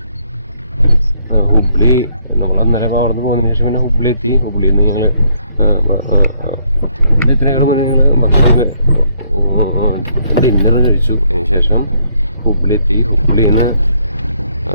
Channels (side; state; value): both; inverted; correlation -0.70